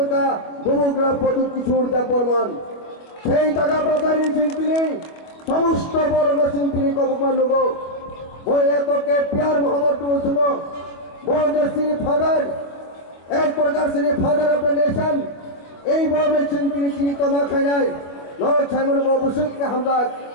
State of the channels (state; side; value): late; right; 25 ms